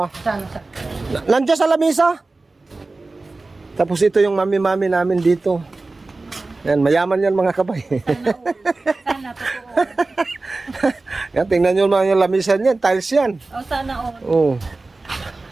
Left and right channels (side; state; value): left; quieter; 3.4 dB